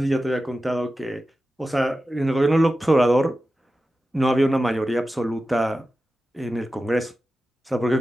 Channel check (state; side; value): normal; both; correlation 0.93